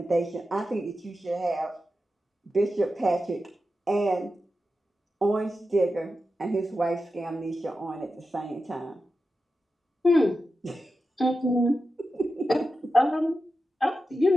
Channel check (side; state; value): both; normal; correlation 0.91